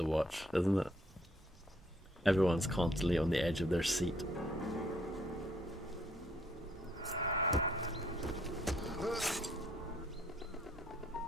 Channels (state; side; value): normal; both; correlation 0.67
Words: watch, isn't it? Everyone's constantly on the edge of their seat.